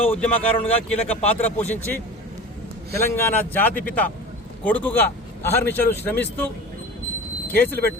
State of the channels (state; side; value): normal; both; correlation 0.35